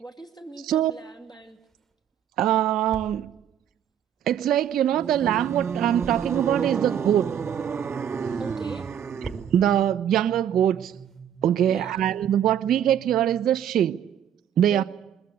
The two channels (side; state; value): left; quieter; 9.8 dB